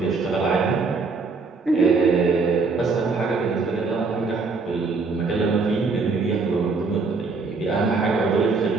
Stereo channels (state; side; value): quieter; left; 4.3 dB